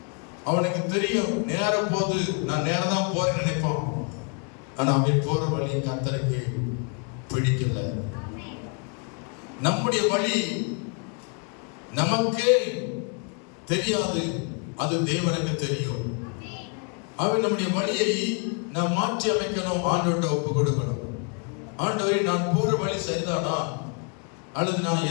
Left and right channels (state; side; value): quieter; right; 38.5 dB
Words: அவனுக்கு தெரியும் நேர போது நான் நேரம் தான் போறேன்னு நினைப்பான். ஆனா அவன் போற வழி கர்த்தருக்கு பிடிக்கல. நம்முடைய வழி நமக்கே தெரியாது, அது தேவனுக்கு தெரியும். அவன் நம்முடைய வழியை நாம் மாற்றி அமைக்கணும், ஆண்டவர்கிட்ட ஒப்பு கொடுக்கணும். ஆண்டவரே, நான் போற வழி சரிதானா, அல்லது நான்